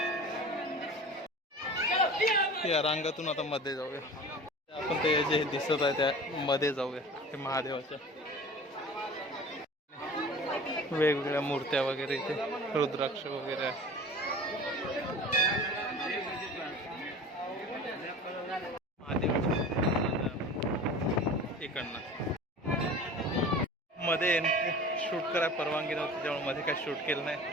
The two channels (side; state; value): both; normal; correlation 0.39